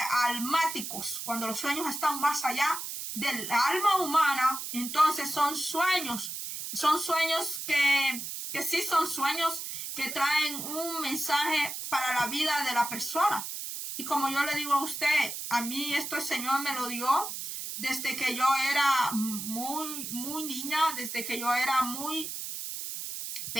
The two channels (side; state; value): right; noise; hiss, 6 dB below the sound